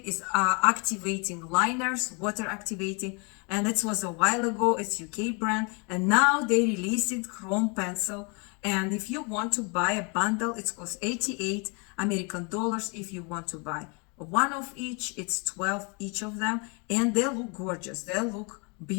is activating liners, water activating, and it was a while ago. It's UK brand, and now they released it chrome pencil. And if you want to buy a bundle, it costs 88 American dollars. If you want to buy one of each, it's 12 each of them, and they look gorgeous. They look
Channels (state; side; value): quieter; right; 32.9 dB